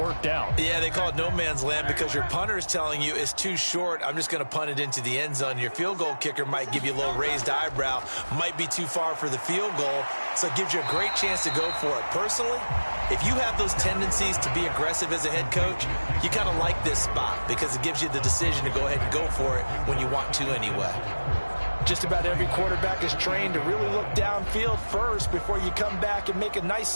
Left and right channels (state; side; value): inverted; both; correlation -1.00